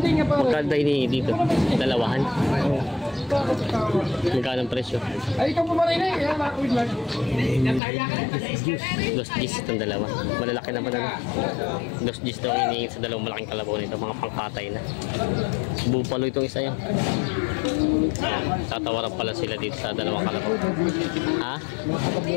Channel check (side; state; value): right; drops out; at 7.8 s